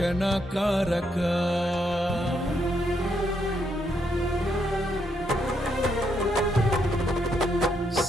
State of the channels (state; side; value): normal; both; correlation 0.77